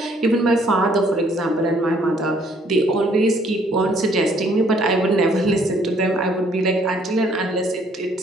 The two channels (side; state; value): both; normal; correlation 0.64